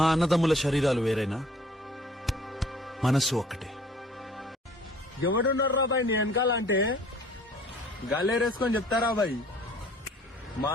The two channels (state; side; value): normal; both; correlation 0.54